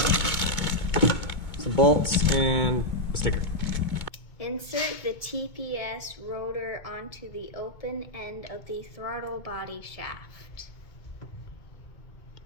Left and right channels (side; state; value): right; late; 2.2 ms